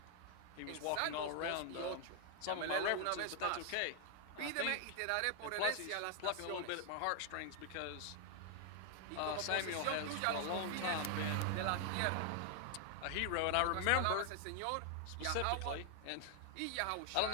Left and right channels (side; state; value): both; different; correlation 0.00